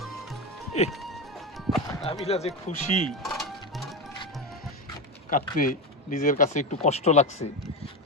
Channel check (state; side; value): normal; both; correlation 0.16